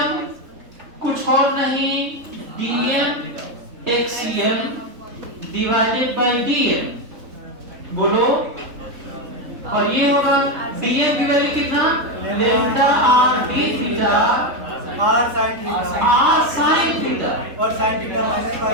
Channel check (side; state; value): left; late; 3.7 ms